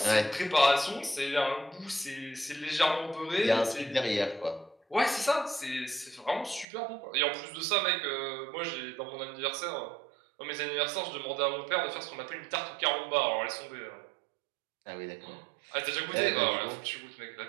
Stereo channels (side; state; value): left; drops out; at 6.7 s